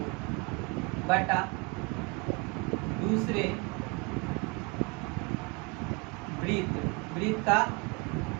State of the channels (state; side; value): quieter; left; 28.7 dB